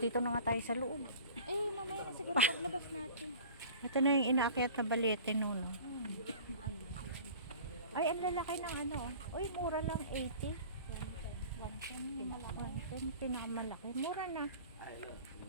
na nga tayo sa loob. Mamaya na siguro paglabas natin. Ito na yung inaakyat na Balete no. Ay, ang lalaki ng ano. Uy, mura lang 80. Yan, pinakamalaki. Mura na.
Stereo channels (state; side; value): inverted; both; correlation -0.42